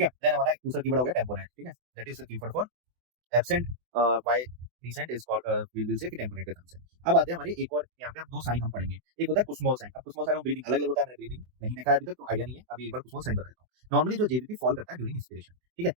है। देन हमारा दूसरा कीवर्ड हो गया टेम्पोनेट, ठीक है, that is the keyword for absent y descent is called will say कि टेम्पोरेट के टर्म से। अब आते हैं हमारे एक और, यहाँ पे अब दो साइन हम पढ़ेंगे, एक होता है कुस्मोल साइन। अब कुस्मोल साइन और ब्रीदिंग अलग अलग होता है, मैंने ब्रीदिंग नहीं देखा है अभी तक तो आइडिया नहीं है, अभी एक बार कुस्मोल साइन बता देता हूँ। नॉर्मली जो जेबीपी फॉल करता है ड्यूरिंग इंस्पिरेशन, ठीक है,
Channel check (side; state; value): left; late; 24 ms